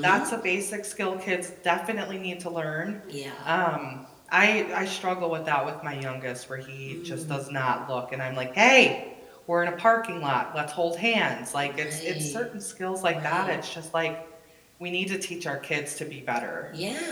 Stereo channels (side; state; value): both; identical; correlation 1.00